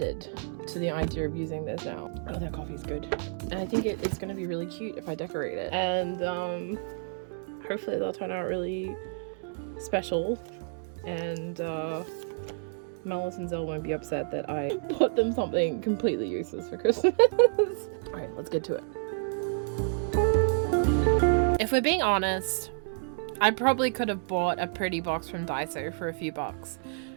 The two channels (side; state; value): left; silent; digital silence